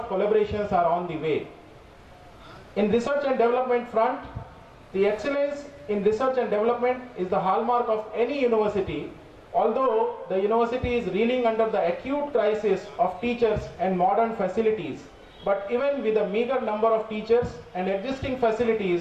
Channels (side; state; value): both; identical; correlation 1.00